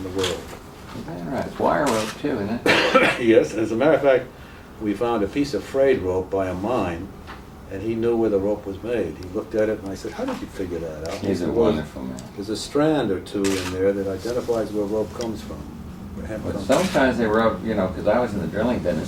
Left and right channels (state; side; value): identical; both; correlation 1.00